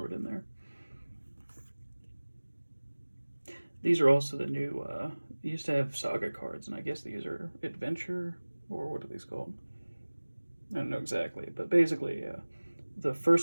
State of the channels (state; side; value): inverted; both; correlation -1.00